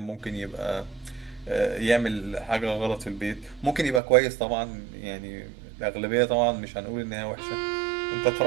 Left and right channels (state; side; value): drops out; left; at 4.0 s